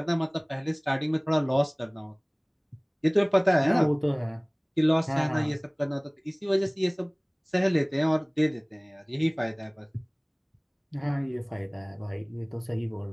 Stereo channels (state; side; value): identical; both; correlation 1.00